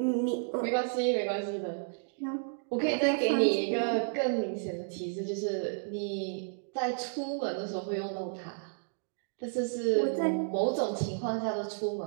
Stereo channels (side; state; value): left; silent; digital silence